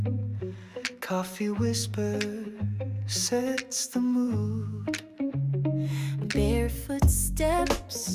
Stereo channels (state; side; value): identical; both; correlation 1.00